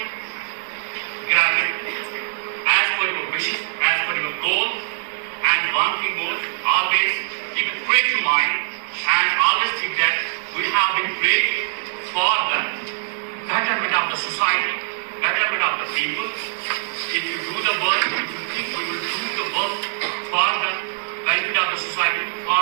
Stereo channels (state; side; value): silent; left; digital silence